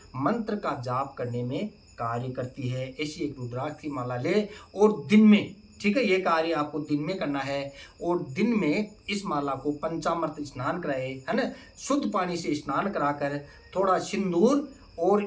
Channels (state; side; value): identical; both; correlation 1.00